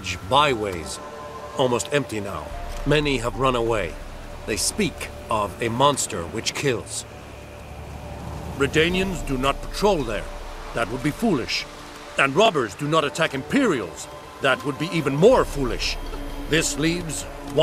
Byways. Almost empty now. Many have run away. They speak of a monster which kills. Redanians do not patrol there. That would be foolish. And robbers do not attack Imperials. That would be even more foolish. This leaves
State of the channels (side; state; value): both; identical; correlation 1.00